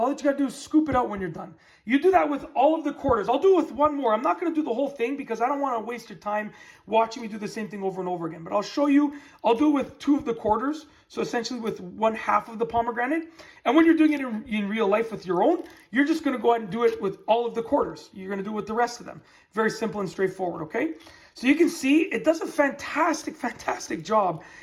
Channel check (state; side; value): identical; both; correlation 1.00